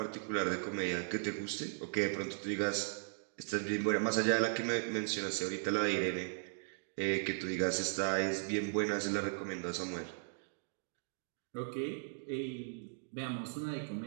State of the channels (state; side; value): silent; left; digital silence